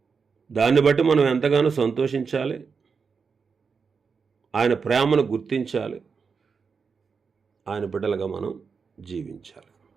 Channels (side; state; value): left; quieter; 5.5 dB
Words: దాన్ని బట్టి మనం ఎంతగానో సంతోషించాలి, ఆయన ప్రేమను గుర్తించాలి, ఆయన బిడ్డలుగా మనం జీవించాలి.